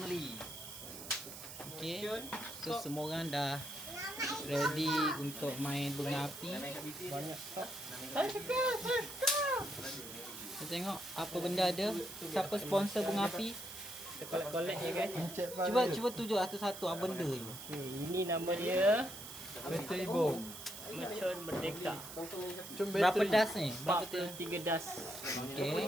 Okay, so semua orang dah ready untuk main bunga api. Banyak. Kita tengok apa benda ada. Siapa sponsor bunga api? Kita collect ya guys. Cuba tunjuk satu-satu apa benda tu. Ini nama dia Bateri bom. Mercon Merdeka. Berapa das ni? Berapa tu? 43 das.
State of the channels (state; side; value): noise; right; hiss, 11 dB below the sound